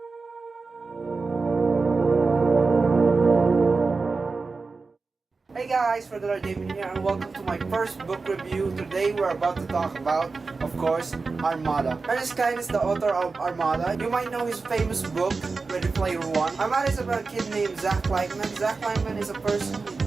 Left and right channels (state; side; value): quieter; left; 4.2 dB